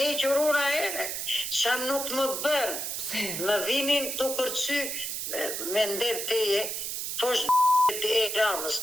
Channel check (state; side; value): noise; right; hiss, 4 dB below the sound